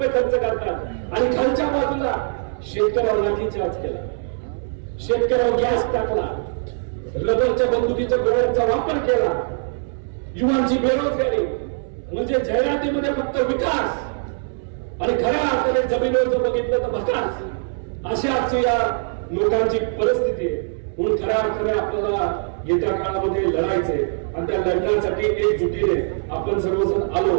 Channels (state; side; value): silent; left; 64 dB below the other